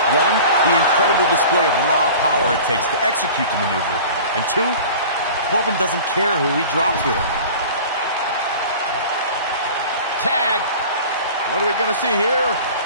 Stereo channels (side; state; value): both; inverted; correlation -0.40